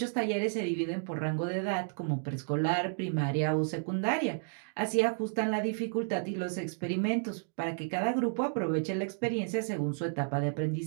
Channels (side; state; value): left; silent; digital silence